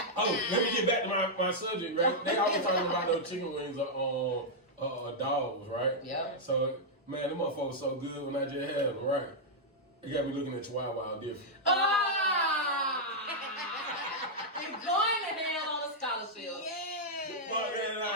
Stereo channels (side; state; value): both; normal; correlation -0.05